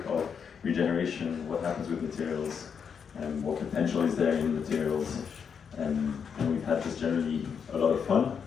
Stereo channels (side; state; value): right; quieter; 6.8 dB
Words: of regeneration, what happens with materials, what potential is there in materials. And we've had just generally a lot of fun,